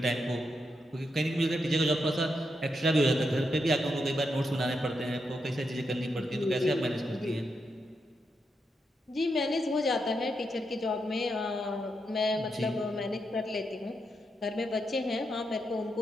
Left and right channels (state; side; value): normal; both; correlation 0.83